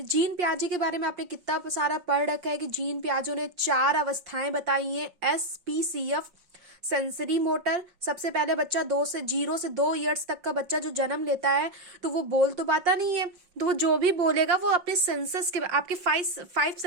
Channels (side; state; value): left; late; 5.6 ms